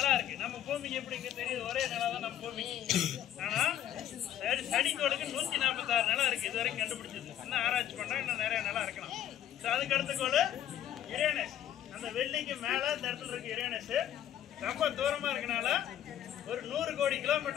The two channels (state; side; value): quieter; right; 11.2 dB